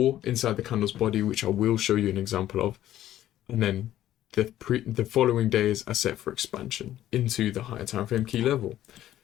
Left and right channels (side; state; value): right; quieter; 12.8 dB